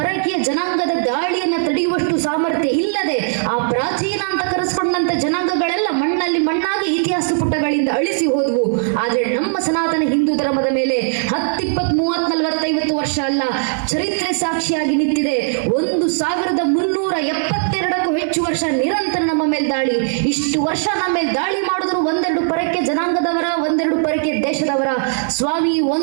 ಜನಾಂಗದ ದಾಳಿಯನ್ನು ತಡೆಯುವಷ್ಟು ಸಾಮರ್ಥ್ಯ ಇಲ್ಲದೆ ಆ ಪ್ರಾಚೀನ ಅಂತ ಕರೆಸ್ಕೊಂಡಂತ ಜನಾಂಗಗಳೆಲ್ಲ ಮಣ್ಣಲ್ಲಿ ಮಣ್ಣಾಗಿ ಇತಿಹಾಸ ಪುಟಗಳಿಂದ ಅಳಿಸಿ ಹೋದವು. ಆದ್ರೆ ನಮ್ಮ ಸನಾತನ ಹಿಂದೂ ಧರ್ಮದ ಮೇಲೆ 10, 20, 30, 40, 50 ವರ್ಷ ಅಲ್ಲ, ಚರಿತ್ರೆ ಸಾಕ್ಷಿಯಾಗಿ ನಿಂತಿದೆ. 1,372ಕ್ಕೂ ಹೆಚ್ಚು ವರ್ಷ ನಿರಂತರ ನಮ್ಮ ಮೇಲೆ ದಾಳಿ. ಇಷ್ಟು ವರ್ಷ ನಮ್ಮ ಮೇಲೆ ದಾಳಿ ಮಾಡಿದ್ರು ಒಂದೆರಡು ಪರಕ್ಕೆ ಜನಾಂಗದವರ, ಒಂದೆರಡು ಪರಕ್ಕೆ ದೇಶದವರ. ಸ್ವಾಮಿ,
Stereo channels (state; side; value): silent; left; digital silence